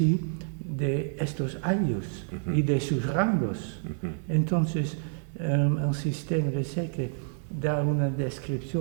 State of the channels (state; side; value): silent; left; 59 dB below the other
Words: de estos ayllus y de sus rangos. Entonces, el sistema de Seque da una